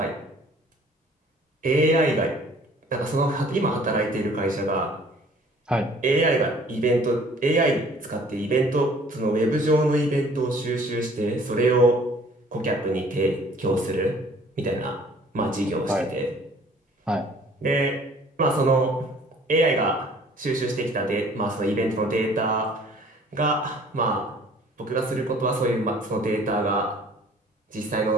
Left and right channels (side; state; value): both; normal; correlation 0.54